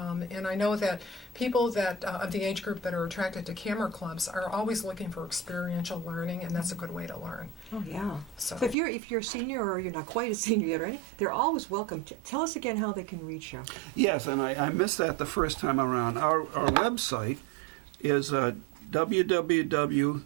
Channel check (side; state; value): left; drops out; at 8.8 s